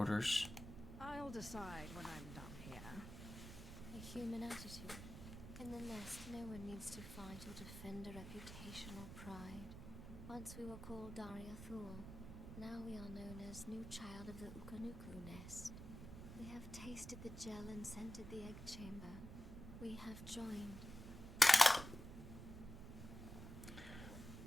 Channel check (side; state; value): right; noise; rumble, 10 dB below the sound